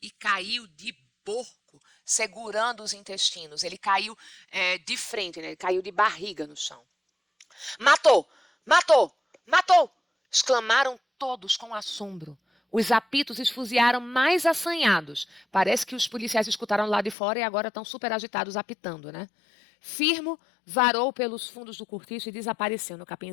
e caiu de porco, segurando os intestinos. Ele caiu de frente, né? Ele caiu de barriga no chão. Matou! Matou! Matou! Exclamaram todos com assombro. Os apitos esfuziaram mais assanhados. Parece que os policiais escutaram lá de fora e agora estão super agitados apitando, né? Firmo varou pelos fundos do cortiço e desapareceu no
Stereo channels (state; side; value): drops out; right; at 17.2 s